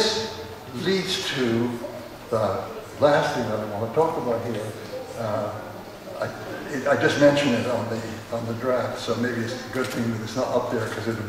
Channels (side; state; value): both; identical; correlation 1.00